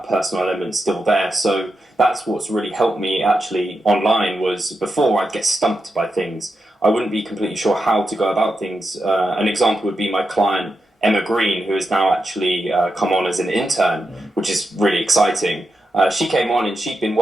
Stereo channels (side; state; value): both; normal; correlation 0.87